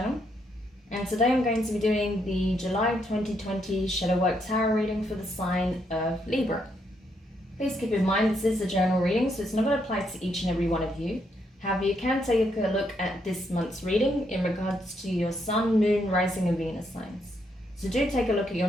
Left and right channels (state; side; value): normal; both; correlation 0.76